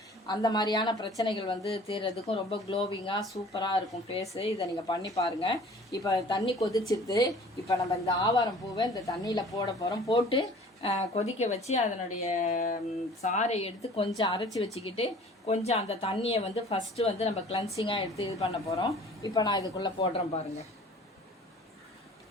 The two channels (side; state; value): both; normal; correlation 0.48